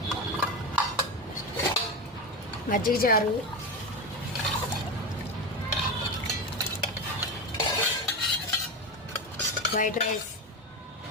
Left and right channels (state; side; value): normal; both; correlation 0.19